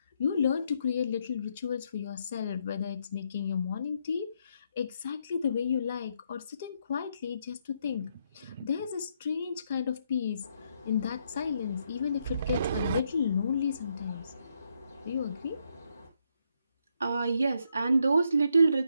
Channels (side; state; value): both; inverted; correlation -0.77